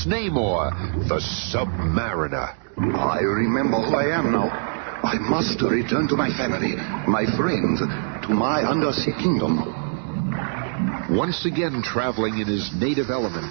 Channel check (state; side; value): silent; left; digital silence